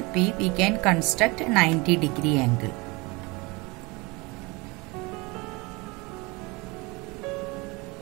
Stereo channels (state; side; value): quieter; left; 25.7 dB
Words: P we can construct a 90 degree angle.